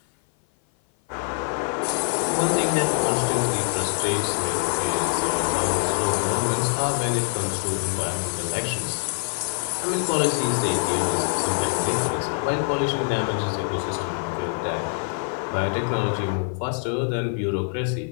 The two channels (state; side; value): silent; right; 56 dB below the other